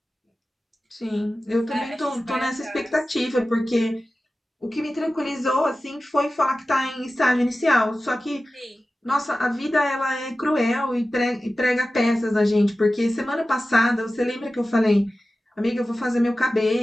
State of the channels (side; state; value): both; normal; correlation 0.95